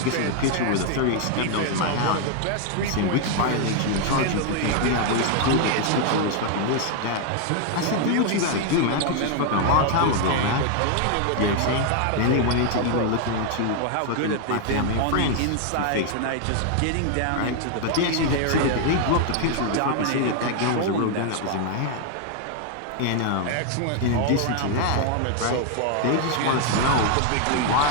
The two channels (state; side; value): different; both; correlation 0.00